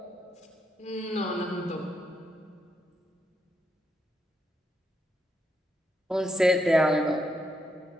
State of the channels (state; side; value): normal; both; correlation 0.80